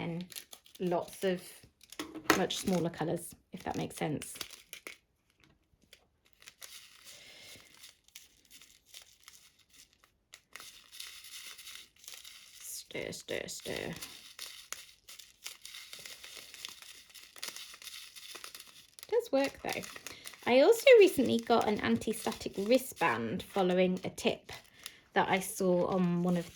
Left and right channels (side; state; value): both; identical; correlation 1.00